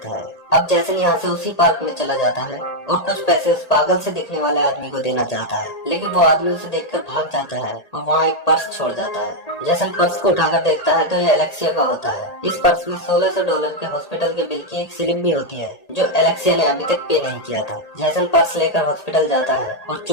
है। अब जैसन यहाँ से उसी पार्क में चला जाता है और कुछ पैसे उस पागल से दिखने वाले आदमी को देना चाहता है, लेकिन वो आदमी उसे देखकर भाग जाता है और वहाँ एक पर्स छोड़ जाता है। जैसन पर्स को उठाकर देखता है तो ये एलेक्सिया का होता है। इस पर्स में $1600 के हॉस्पिटल के बिल की एक स्लिप भी होती है जो एलेक्सिया ने अभी तक पे नहीं किया था। जैसन पर्स लेकर हॉस्पिटल जाता है और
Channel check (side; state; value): right; late; 1.8 ms